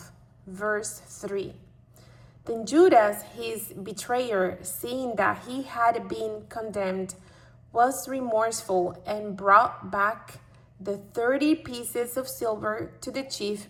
Verse 3. Then Judas, his betrayer, seeing that he had been condemned, was remorseful and brought back the 30 pieces of silver to the chief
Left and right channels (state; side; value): identical; both; correlation 1.00